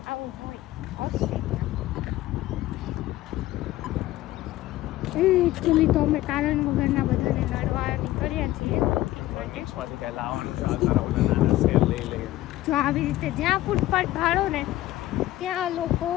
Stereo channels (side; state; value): right; quieter; 15.8 dB